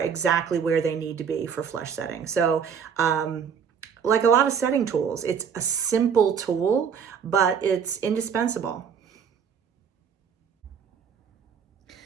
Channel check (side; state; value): left; quieter; 7.1 dB